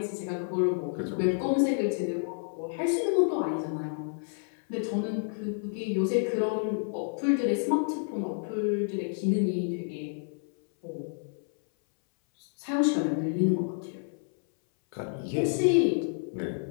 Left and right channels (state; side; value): silent; right; 58 dB below the other